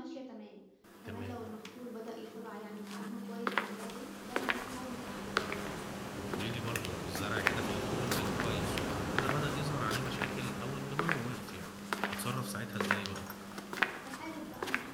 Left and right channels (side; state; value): both; identical; correlation 1.00